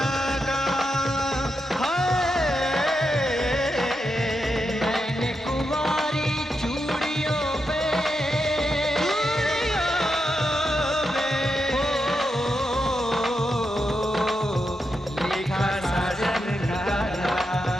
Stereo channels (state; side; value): normal; both; correlation 0.86